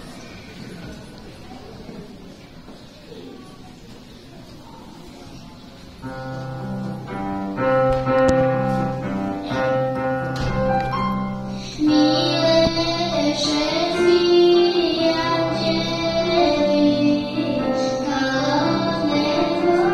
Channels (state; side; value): identical; both; correlation 1.00